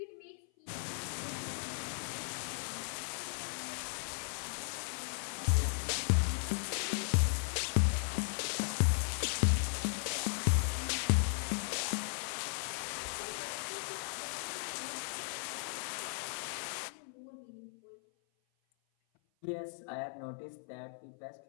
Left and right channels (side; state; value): right; silent; 53 dB below the other